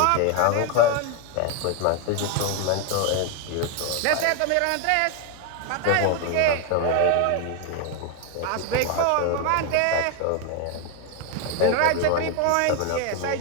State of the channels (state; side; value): different; both; correlation 0.01